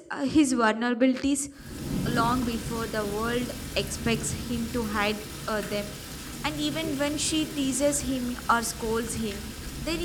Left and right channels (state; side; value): identical; both; correlation 1.00